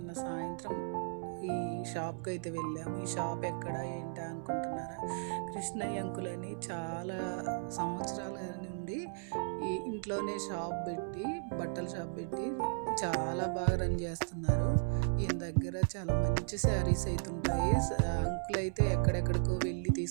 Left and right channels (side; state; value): left; silent; 54 dB below the other